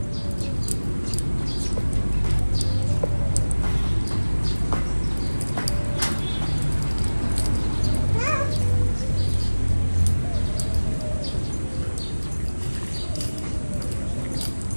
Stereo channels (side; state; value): both; inverted; correlation -1.00